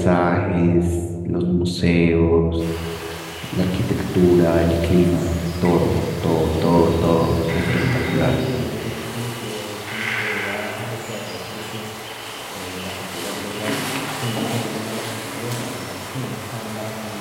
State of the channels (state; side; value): identical; both; correlation 1.00